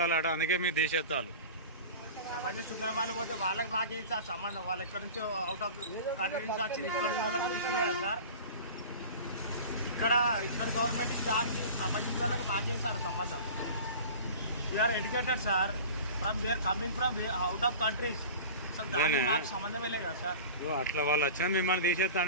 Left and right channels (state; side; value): inverted; both; correlation -0.36